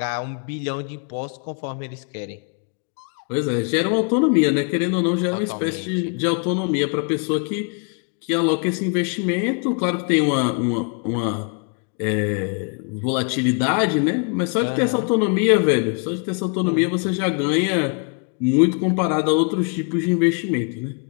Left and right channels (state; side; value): quieter; right; 39.5 dB